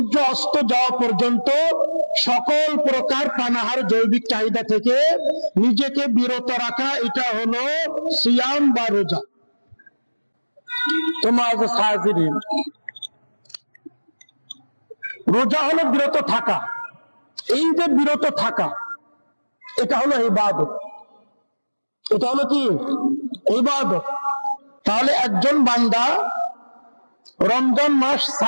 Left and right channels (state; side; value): inverted; both; correlation -1.00